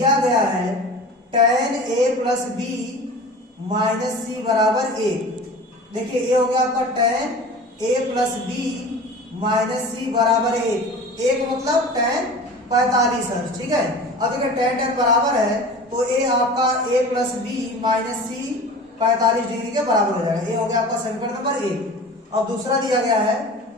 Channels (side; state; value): both; normal; correlation 0.37